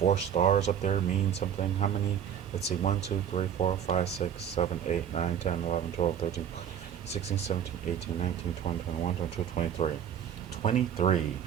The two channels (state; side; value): quieter; left; 8.9 dB